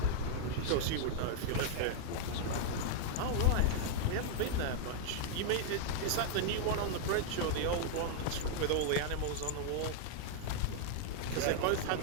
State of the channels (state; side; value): different; both; correlation -0.01